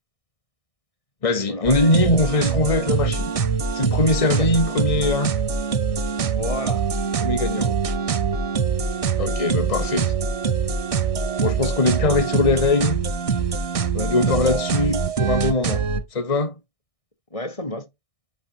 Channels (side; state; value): right; late; 1.6 ms